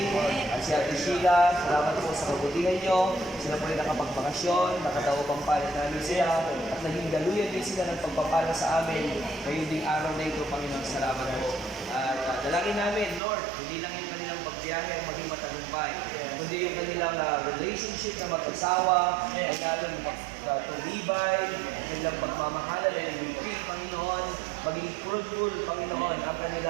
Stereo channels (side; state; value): left; drops out; at 13.2 s